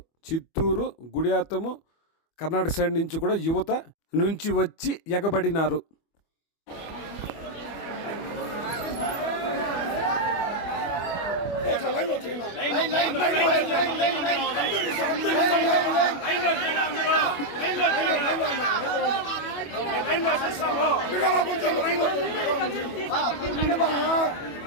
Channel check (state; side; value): late; right; 25 ms